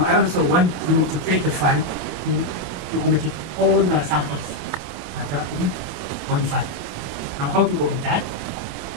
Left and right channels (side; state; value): left; late; 28 ms